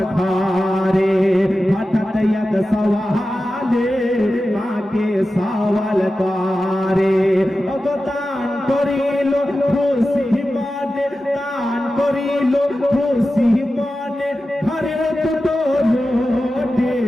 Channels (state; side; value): normal; both; correlation 0.93